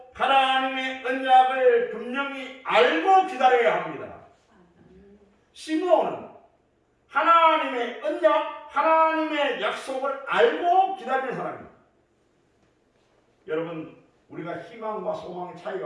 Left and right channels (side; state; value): both; identical; correlation 1.00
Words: 하나님의 언약을 분명히 알고 기다려야 합니다. 시므온은 하나님의 언약, 하나님의 약속을 알고 기다리는 사람입니다. 여러분 우리가 희망과 소망의